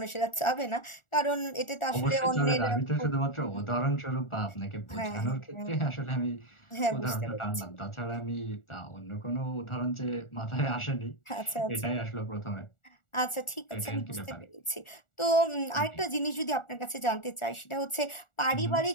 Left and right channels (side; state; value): right; late; 1.4 ms